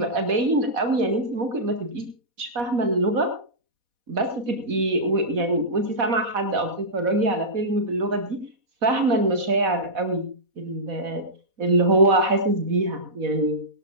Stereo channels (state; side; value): late; left; 4.1 ms